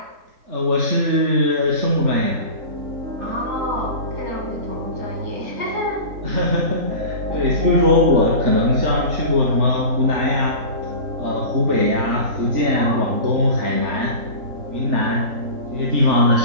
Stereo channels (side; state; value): left; late; 3.8 ms